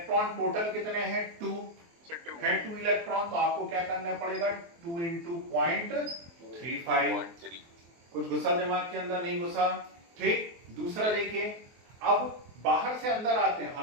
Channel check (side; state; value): left; late; 23 ms